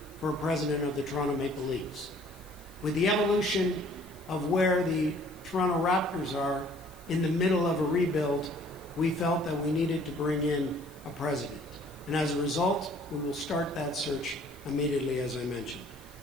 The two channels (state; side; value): noise; left; hiss, 24 dB below the sound